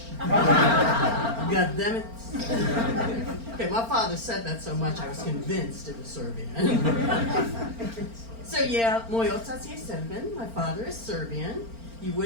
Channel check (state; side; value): late; left; 4.4 ms